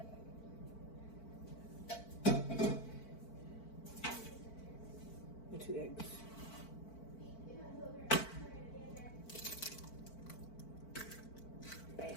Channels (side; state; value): right; late; 4.5 ms